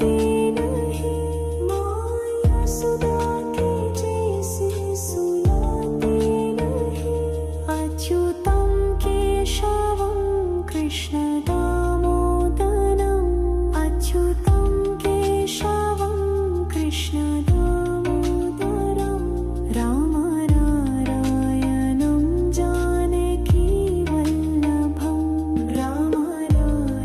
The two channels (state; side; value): identical; both; correlation 1.00